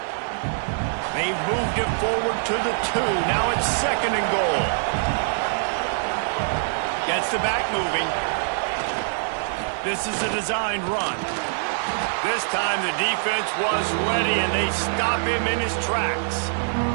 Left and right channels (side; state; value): left; silent; 55 dB below the other